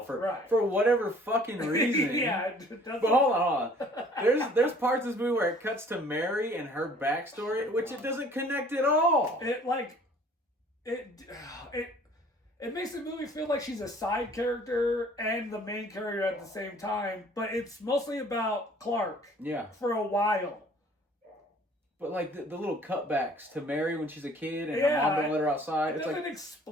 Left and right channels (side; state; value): both; normal; correlation 0.54